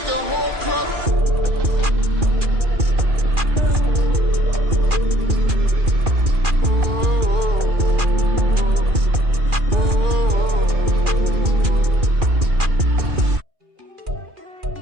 the whole club.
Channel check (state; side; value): late; left; 2.4 ms